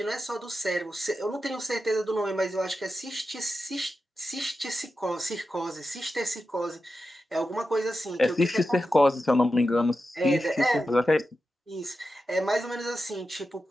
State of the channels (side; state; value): both; normal; correlation 0.90